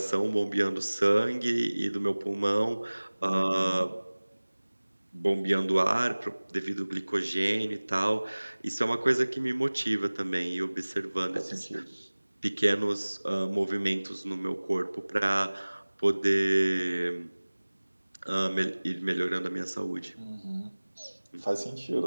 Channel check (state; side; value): inverted; both; correlation -1.00